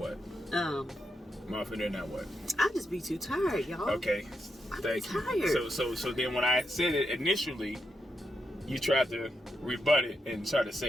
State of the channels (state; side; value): normal; both; correlation 0.84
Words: More often than not, what? I just be too tired, y'all. Okay, thank you. So then when I said it initially, you tried to rebut it and try to